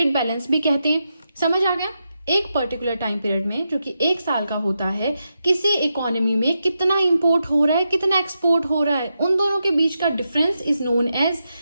बैलेंस भी कहते हैं। समझ आ गया। एक पर्टिकुलर टाइम पीरियड में, जो कि 1 साल का होता है, किसी इकोनॉमी में कितना इंपोर्ट हो रहा है, कितना एक्सपोर्ट हो रहा है, उन दोनों के बीच का difference is known as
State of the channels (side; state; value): both; inverted; correlation -0.86